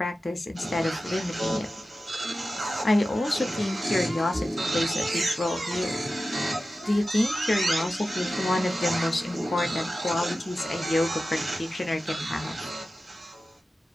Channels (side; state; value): both; normal; correlation 0.94